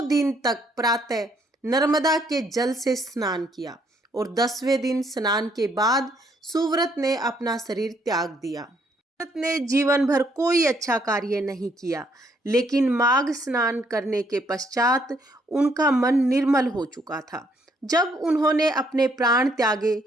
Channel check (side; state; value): both; normal; correlation 0.69